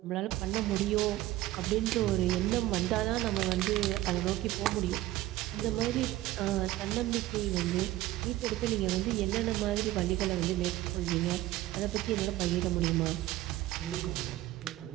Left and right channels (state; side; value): quieter; left; 15.9 dB